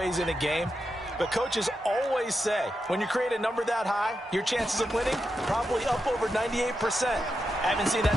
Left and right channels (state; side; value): normal; both; correlation 0.87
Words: in a game. But coaches always say, when you create a number that high, your chances of winning probably up over 98%. I haven't seen